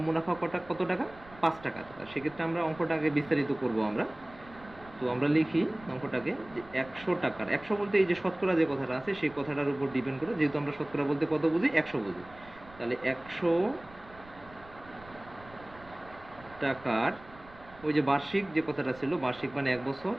মুনাফা কত টাকা, 5 টাকা। সেক্ষেত্রে আমরা অঙ্কটা আগে বিস্তারিত করব আমরা। তো আমরা লিখি অঙ্কটাকে যে 100 টাকার, 100 বলতে এই যে শতকরা যে কথাটা আছে সেই কথাটার উপর ডিপেন্ড করে, যেহেতু আমরা শতকরা বলতে কত বুঝি, 100 বুঝি। তাহলে 100 টাকার ওই যে বার্ষিক যে কথাটা ছিল, বার্ষিক মানে 1 বছর,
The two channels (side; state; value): right; noise; rumble, 21 dB below the sound